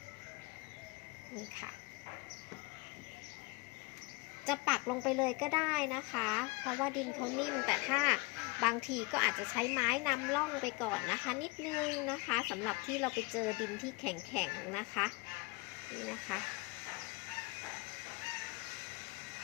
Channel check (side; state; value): right; quieter; 25.8 dB